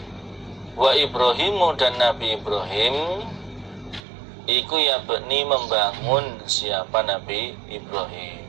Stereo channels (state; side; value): drops out; left; at 4.0 s